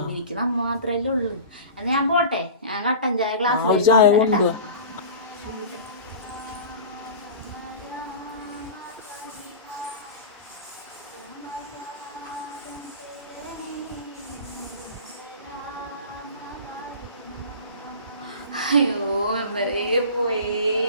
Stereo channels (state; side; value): inverted; both; correlation -0.35